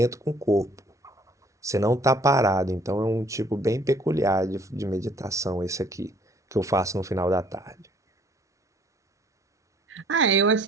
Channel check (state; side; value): normal; both; correlation 0.58